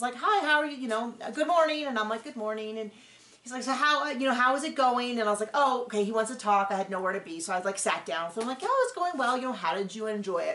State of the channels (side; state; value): both; identical; correlation 1.00